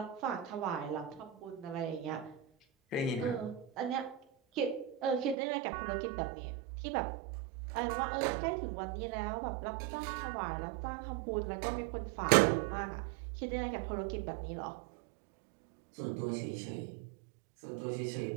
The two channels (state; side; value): drops out; left; at 5.4 s